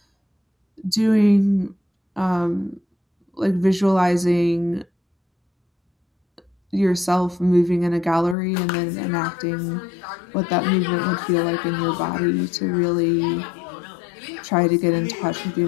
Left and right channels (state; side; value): drops out; right; at 8.3 s